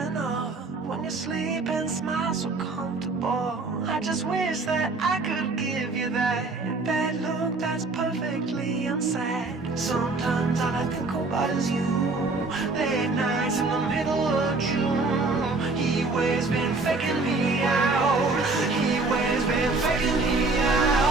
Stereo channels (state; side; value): quieter; left; 3.6 dB